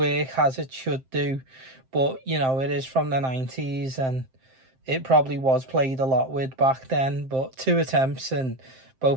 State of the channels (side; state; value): left; late; 7.6 ms